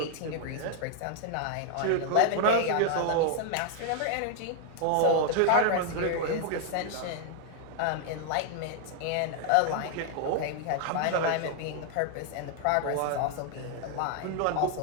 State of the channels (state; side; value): different; both; correlation 0.00